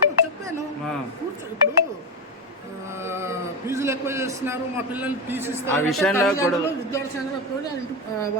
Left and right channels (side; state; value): both; normal; correlation 0.14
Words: చెప్పాను, ఇప్పుడు ఫీజులు ఎక్కువ చేస్తున్నారు, మా పిల్లల్ని తీసిస్తారు, ఆ విషయంలో కూడా విద్యార్థి సంఘాలకు కూడా